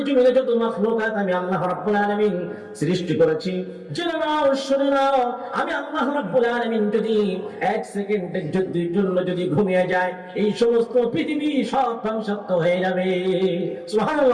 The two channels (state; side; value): identical; both; correlation 1.00